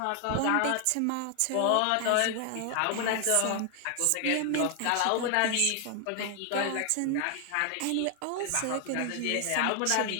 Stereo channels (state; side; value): different; both; correlation 0.00